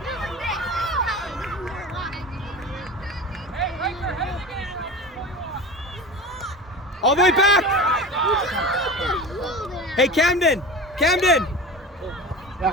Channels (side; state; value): both; normal; correlation 0.33